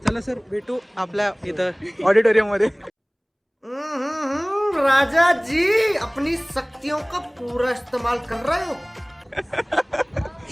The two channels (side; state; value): both; identical; correlation 1.00